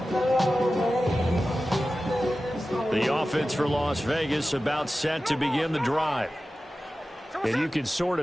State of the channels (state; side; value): normal; both; correlation 0.95